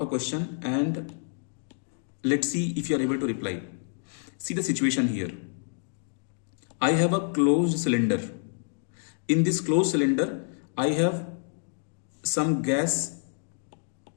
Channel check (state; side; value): silent; right; 59 dB below the other